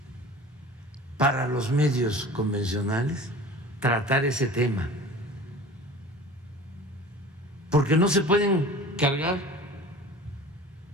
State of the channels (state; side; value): normal; both; correlation 0.41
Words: para los medios convencionales tratar ese tema, porque no se pueden cargar